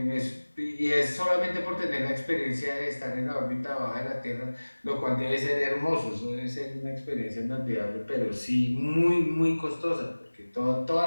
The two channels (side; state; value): both; inverted; correlation -1.00